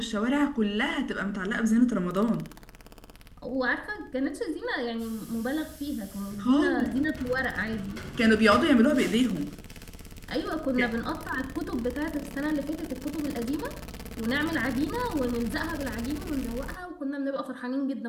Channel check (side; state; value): both; identical; correlation 1.00